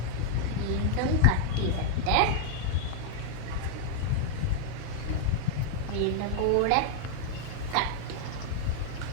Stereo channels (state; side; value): different; both; correlation -0.01